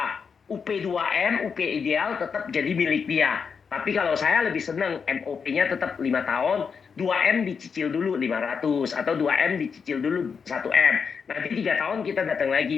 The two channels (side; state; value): right; quieter; 6.0 dB